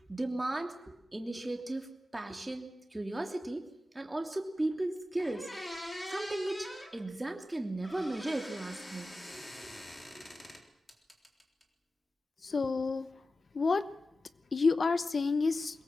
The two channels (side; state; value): both; normal; correlation 0.94